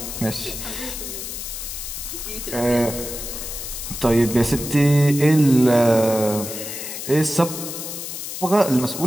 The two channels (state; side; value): noise; left; hiss, 7 dB below the sound